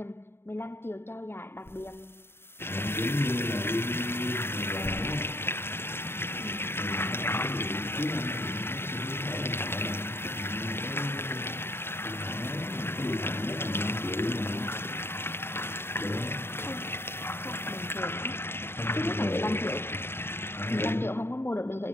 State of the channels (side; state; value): right; late; 0.11 ms